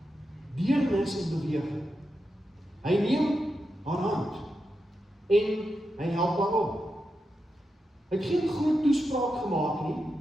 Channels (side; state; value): both; normal; correlation 0.88